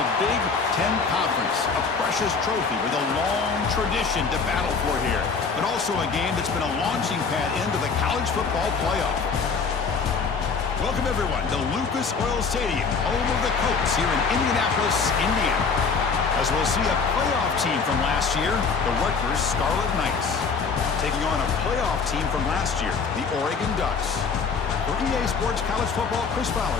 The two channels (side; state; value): right; quieter; 5.2 dB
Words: Big Ten Conference, a precious trophy with a long tradition to battle for here, but also a game that's been a launching pad into the college football playoff. Welcome, everyone, to Lucas Oil Stadium, home of the Colts here in Indianapolis, Indiana. As we'll see a playoff team from last year, the Rutgers Scarlet Knights, taking on a playoff team from last year, the Oregon Ducks. For EA Sports College Football, Chris